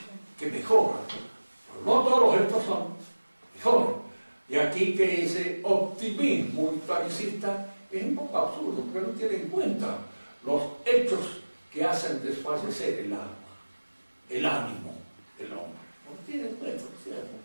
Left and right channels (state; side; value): inverted; both; correlation -1.00